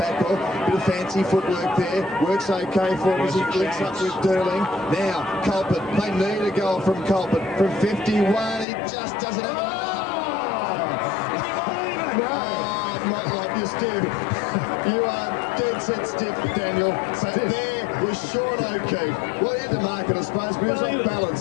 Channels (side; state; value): right; drops out; at 8.7 s